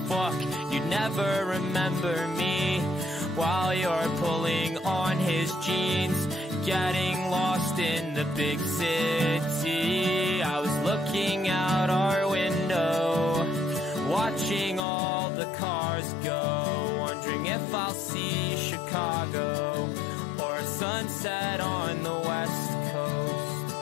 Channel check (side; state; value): right; drops out; at 14.8 s